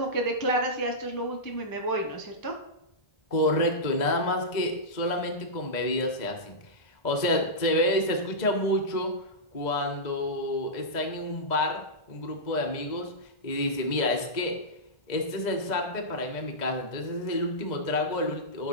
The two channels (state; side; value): late; right; 2.0 ms